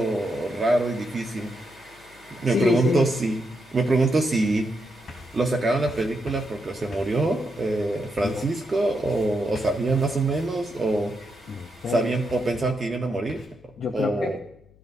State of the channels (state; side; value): noise; left; hum, 28 dB below the sound